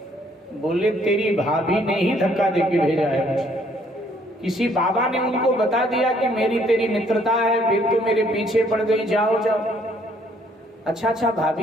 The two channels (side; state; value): both; normal; correlation 0.65